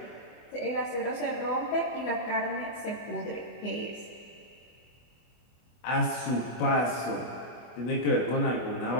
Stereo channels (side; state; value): right; late; 24 ms